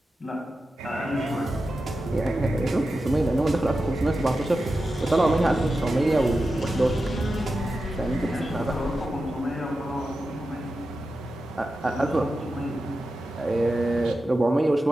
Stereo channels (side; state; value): both; normal; correlation 0.91